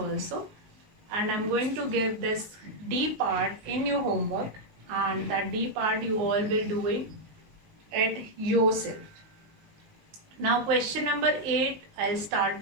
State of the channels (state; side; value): late; left; 19 ms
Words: And I'm going to give this D part in your homework, and that D part you all will doing it yourself. Now question number 8, I'll start